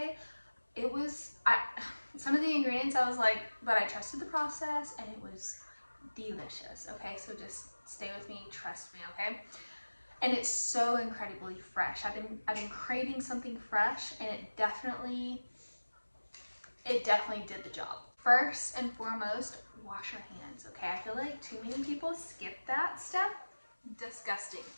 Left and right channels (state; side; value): inverted; both; correlation -1.00